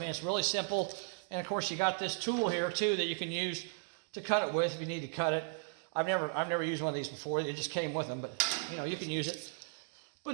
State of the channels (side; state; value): left; silent; digital silence